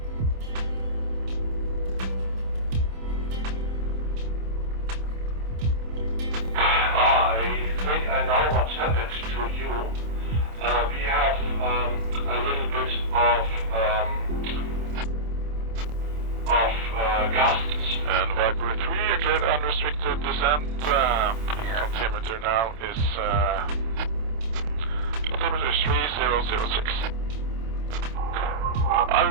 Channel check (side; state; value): left; late; 27 ms